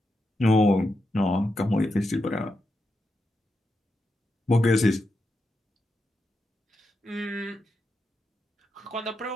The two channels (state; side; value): normal; both; correlation 0.86